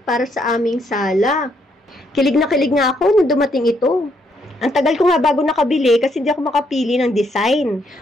para sa aming sala. Kilig na kilig nga ako nung dumating ito. Ang tagal ko nga bago nakabili kasi hindi ako makapili ng design.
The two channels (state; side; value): normal; both; correlation 0.73